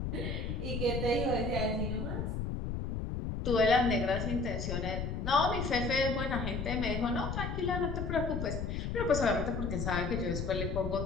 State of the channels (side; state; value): left; noise; rumble, 3 dB below the sound